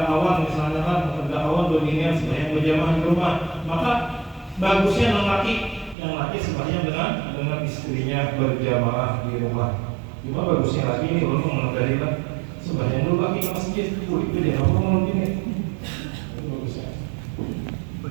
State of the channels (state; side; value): drops out; left; at 6.0 s